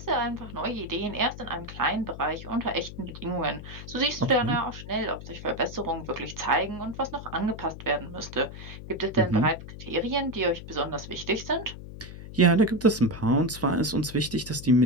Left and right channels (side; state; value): left; noise; hum, 12 dB below the sound